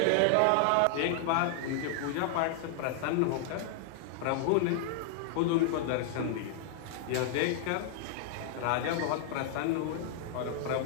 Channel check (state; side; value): different; both; correlation -0.01